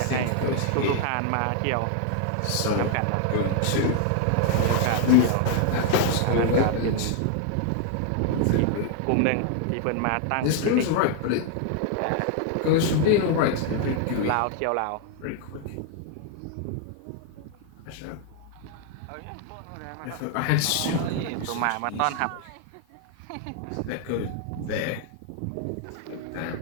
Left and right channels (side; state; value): both; different; correlation 0.00